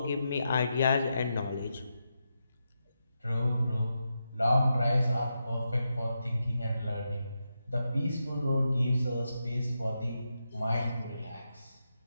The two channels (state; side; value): inverted; both; correlation -0.86